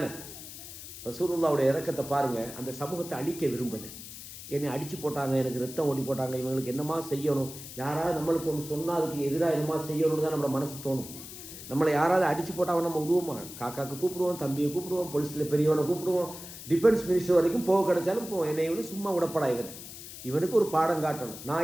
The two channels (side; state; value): left; noise; hiss, 13 dB below the sound